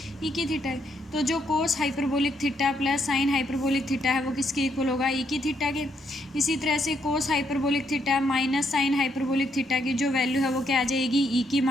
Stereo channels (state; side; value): normal; both; correlation 0.75